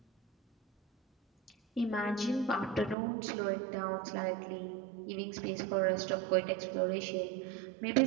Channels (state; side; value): drops out; left; at 3.0 s